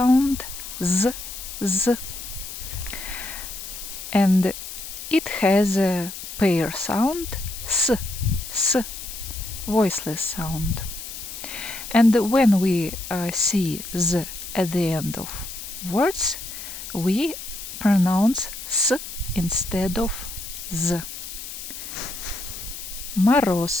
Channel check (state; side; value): noise; left; hiss, 10 dB below the sound